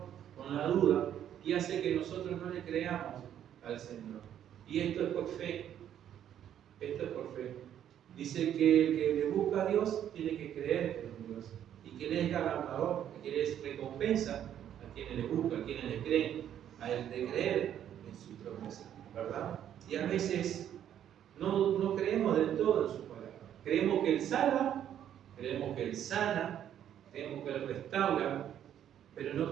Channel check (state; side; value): quieter; left; 10.2 dB